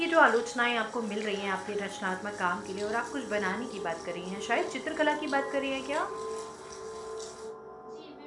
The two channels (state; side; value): identical; both; correlation 1.00